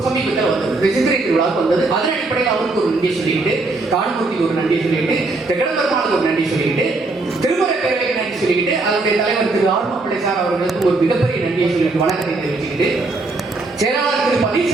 சமீபத்தில் வந்தது, சித்திரை திருவிழாவுக்கு வந்தது. அதன் அடிப்படையில் அவருக்கு ஒரு நன்றி சொல்லிட்டு, தான்மூர்த்திக்கு ஒரு நன்றி சொல்லிட்டு, தெக்கடம்பெருமாளுக்கு ஒரு நன்றி சொல்லிட்டு, திருமுறை பேரவைக்கு நன்றி சொல்லிட்டு, அதனுடைய தலைவர் திரு ஆர்மப்பிள்ளை சார் அவர்களுக்கு ஒரு மிகப்பெரிய நன்றியை சொல்லிட்டு வணக்கத்தை தெரிவிச்சுக்கிட்டு, செயலாளர் திரு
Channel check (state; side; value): quieter; left; 3.3 dB